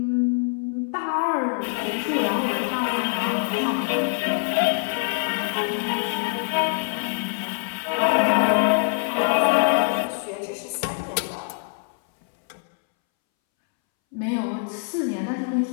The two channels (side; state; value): right; silent; 62 dB below the other